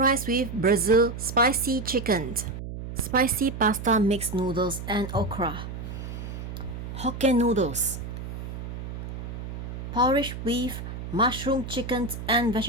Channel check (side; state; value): right; noise; hum, 8 dB below the sound